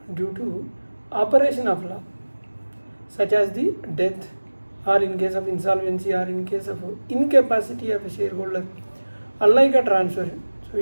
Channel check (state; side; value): inverted; both; correlation -1.00